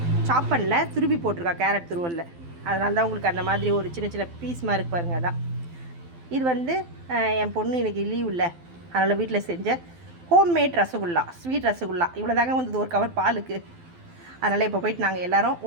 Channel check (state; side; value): late; left; 12 ms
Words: சாப் பண்ணல, துருவி போட்டிருக்கா கேரட் துருவலில். அதனால தான் உங்களுக்கு அந்த மாதிரி ஒரு சின்ன சின்ன பீஸ் மாதிரி இருக்குது பாருங்கள். அதான் இது வந்து என் பொண்ணு எனக்கு லீவ் இல்லை, அதனால் வீட்டில் செஞ்ச ஹோம்மேட் ரசகுல்லா, ஸ்வீட் ரசகுல்லா. இவ்வளோ தாங்க வந்தது ஒரு கவர் பாலுக்கு. அதனால் இப்போ போய்ட்டு நாங்கள் எல்லோரும்